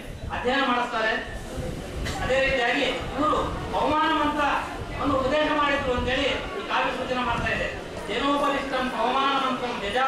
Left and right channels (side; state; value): both; identical; correlation 1.00